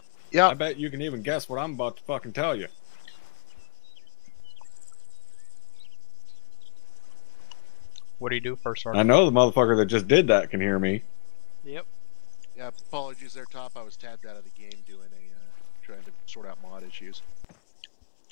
Yeah. I bet you can even guess what I'm about to fucking tell you. What do you do first, I Sergeant? know the motherfucker that just did that can hear me. Yep. Yeah, apologies there, Top. I was tabbed out of the game doing trying to sort out mod issues.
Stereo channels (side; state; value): right; silent; 59 dB below the other